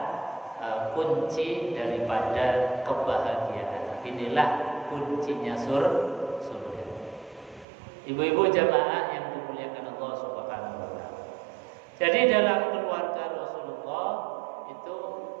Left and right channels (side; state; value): left; drops out; at 7.7 s